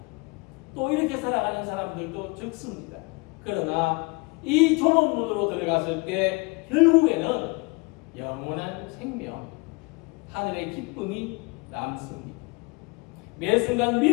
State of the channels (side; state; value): right; quieter; 28.3 dB